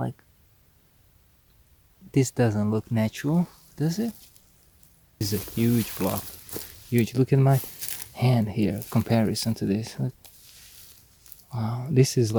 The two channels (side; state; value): both; identical; correlation 1.00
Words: this doesn't look natural, does it? This is a huge block. Huge. Look at my hand here, comparison to this. Look. Wow, this is